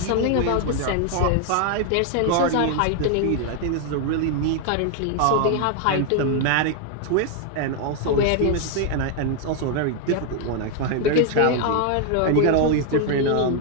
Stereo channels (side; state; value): both; different; correlation 0.00